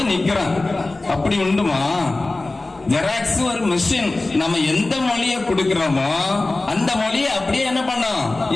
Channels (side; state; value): right; quieter; 3.1 dB